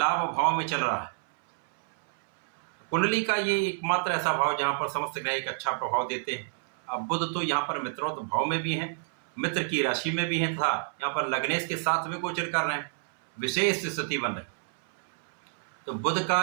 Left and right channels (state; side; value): silent; left; 59 dB below the other